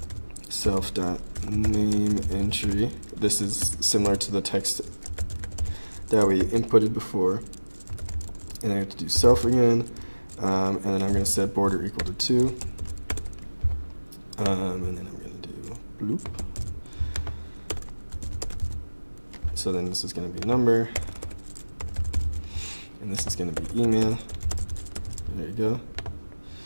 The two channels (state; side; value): inverted; both; correlation -1.00